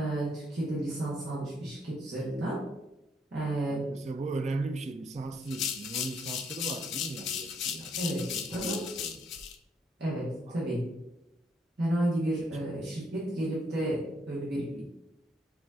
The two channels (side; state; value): both; normal; correlation 0.72